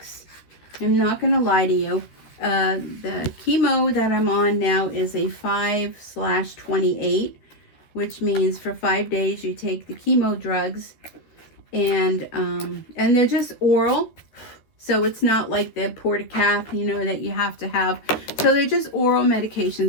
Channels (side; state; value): right; late; 13 ms